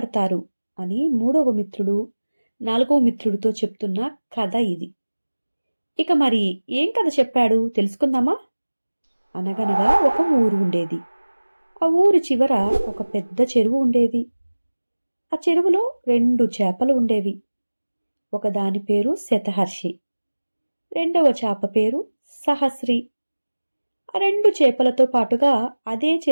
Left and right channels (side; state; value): both; inverted; correlation -1.00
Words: అని మూడవ మిత్రుడు నాలుగవ మిత్రుడితో చెప్తున్న కథ ఇది. ఇక మరి ఏం కథ చెప్పాడు తెలుసుకుందామా? అనగనగా ఒక ఊరు ఉండేది. ఆ ఊరు చివర ఒక పెద్ద చెరువు ఉండేది. ఆ చెరువులో 2 చేపలు ఉండేవి. ఒకదాని పేరు శతహర్షి, రెండవ చేప పేరు సహస్రి. ఆ 2 చేపలతో పాటుగా అదే